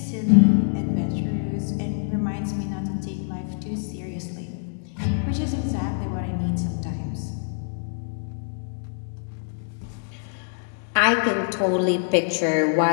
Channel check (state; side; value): silent; right; digital silence